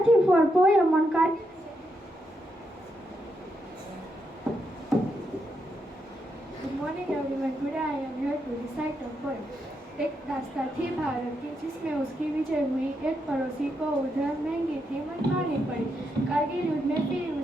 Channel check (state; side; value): normal; both; correlation 0.82